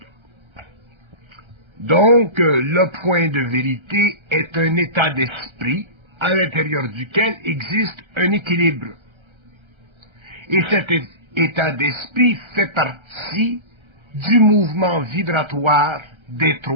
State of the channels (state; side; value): late; left; 1.3 ms